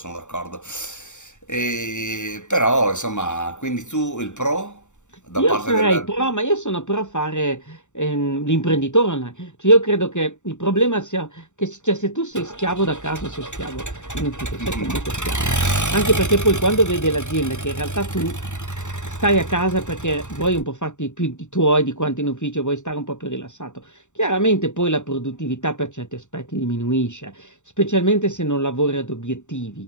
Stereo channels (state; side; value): late; right; 0.84 ms